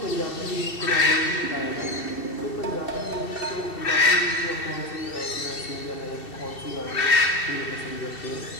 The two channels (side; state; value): right; late; 2.7 ms